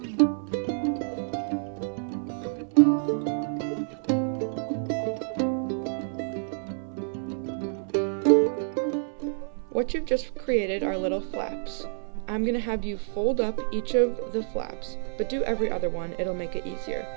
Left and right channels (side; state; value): left; silent; 59 dB below the other